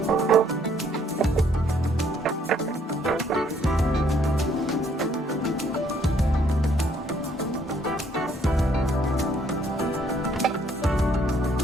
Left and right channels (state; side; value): normal; both; correlation 0.65